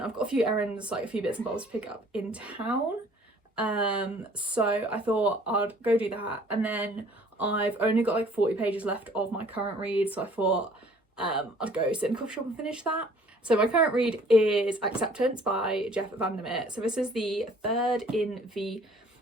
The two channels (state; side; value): normal; both; correlation 0.55